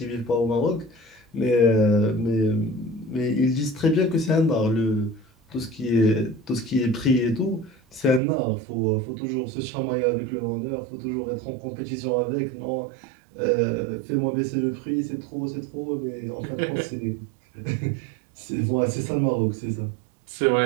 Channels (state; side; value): drops out; left; at 8.2 s